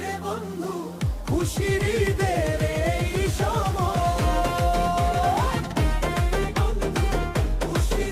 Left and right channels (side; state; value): both; identical; correlation 1.00